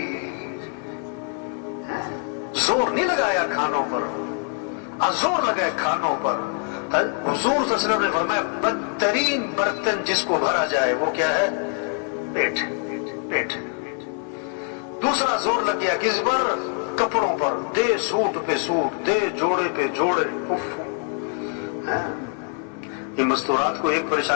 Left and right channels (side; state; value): right; quieter; 39.5 dB